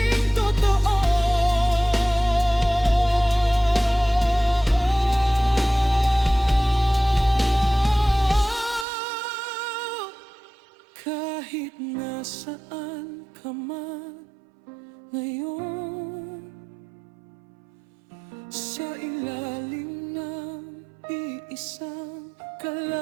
Kahit nasaan ka man ngayon, sa ilalim ng iisang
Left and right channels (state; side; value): drops out; left; at 8.8 s